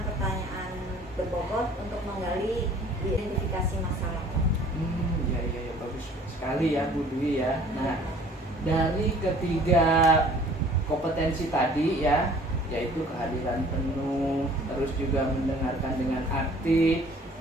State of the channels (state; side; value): normal; both; correlation 0.52